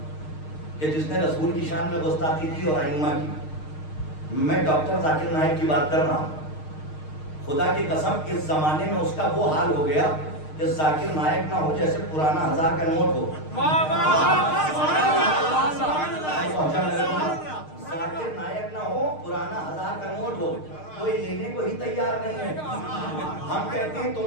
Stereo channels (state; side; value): late; right; 6.5 ms